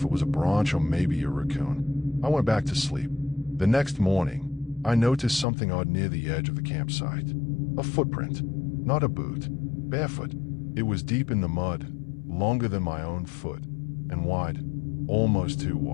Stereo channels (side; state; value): right; drops out; at 5.5 s